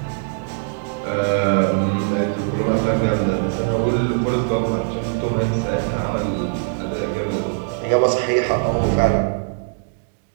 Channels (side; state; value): left; silent; digital silence